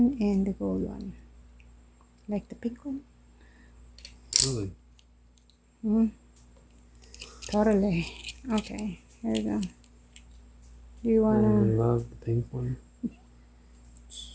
and the gold one. Like the pink one? Really? Totally. Okay. Here you go. Do you I wanna? love the pink one.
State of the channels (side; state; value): both; identical; correlation 1.00